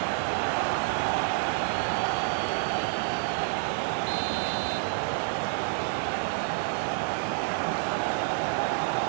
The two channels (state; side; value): silent; left; digital silence